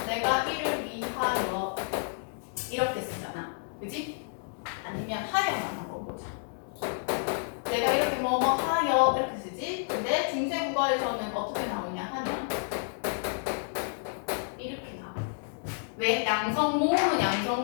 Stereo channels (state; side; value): silent; right; digital silence